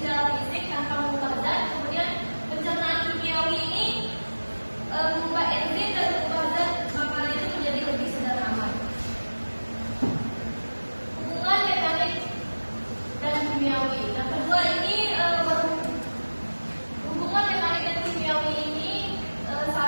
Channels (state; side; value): inverted; both; correlation -1.00